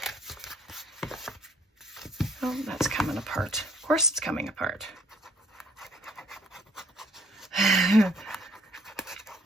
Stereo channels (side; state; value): both; normal; correlation 0.61